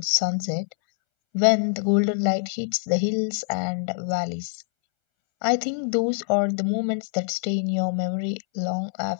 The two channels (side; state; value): right; silent; 62 dB below the other